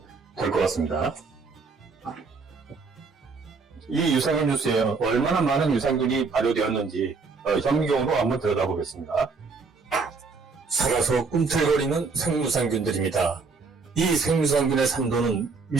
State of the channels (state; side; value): quieter; left; 4.5 dB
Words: 될 것 같습니다. 이 유산균 주스에 얼마나 많은 유산균이 발효되었는지 현미경으로 한번 들여다보겠습니다. 살아서 꿈틀거리는 생유산균들입니다. 이 생유산균의 산도는